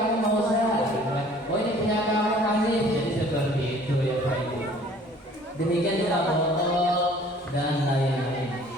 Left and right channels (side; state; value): both; normal; correlation 0.53